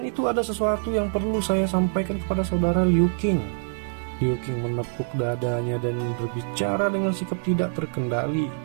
itu, ada sesuatu yang perlu saya sampaikan kepada saudara Liu Qing. Liu Qing menepuk dadanya dan berbicara dengan sikap tidak terkendali.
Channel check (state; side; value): silent; left; digital silence